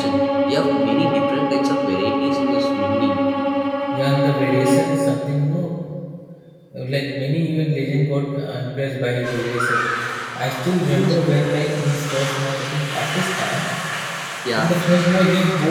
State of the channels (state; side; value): identical; both; correlation 1.00